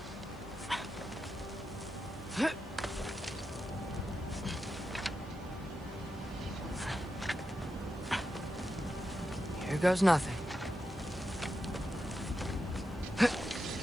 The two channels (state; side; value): noise; right; hiss, 27 dB below the sound